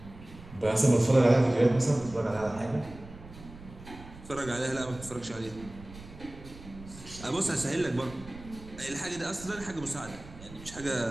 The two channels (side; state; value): right; noise; rumble, 17 dB below the sound